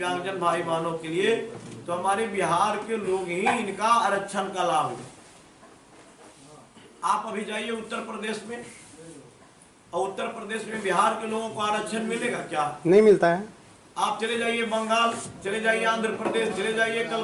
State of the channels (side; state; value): both; identical; correlation 1.00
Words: भाई बहनों के लिए, तो हमारे बिहार के लोग ही इनका आरक्षण का लाभ लें। आप अभी जाइए उत्तर प्रदेश में, और उत्तर प्रदेश में बिहार के लोगों को आरक्षण मिलेगा क्या? नहीं मिलता है। आप चले जाइए बंगाल, चले जाइए आंध्र प्रदेश, चले जाइए